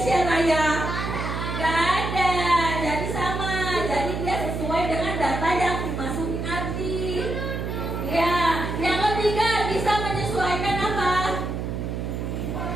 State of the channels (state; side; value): noise; right; hum, 4 dB below the sound